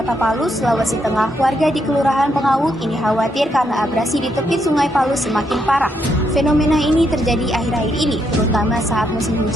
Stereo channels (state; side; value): normal; both; correlation 0.77